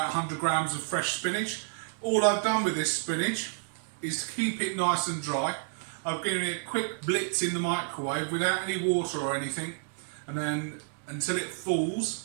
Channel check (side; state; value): left; silent; digital silence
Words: 100 grams of fresh spinach. All I've done with this spinach is to keep it nice and dry. I've given it a quick blitz in the microwave without any water or anything, and then until it